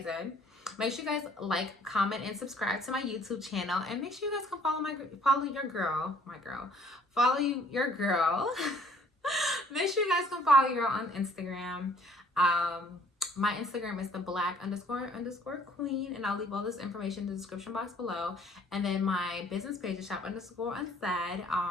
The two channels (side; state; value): both; normal; correlation 0.58